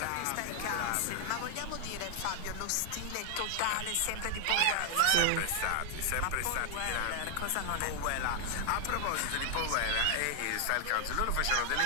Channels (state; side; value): different; both; correlation 0.00